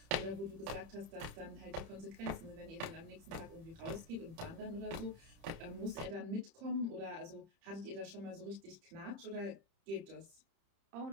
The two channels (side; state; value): left; late; 30 ms